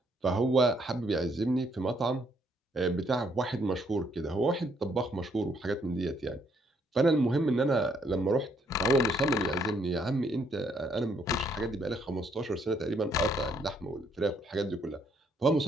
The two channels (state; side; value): normal; both; correlation 0.70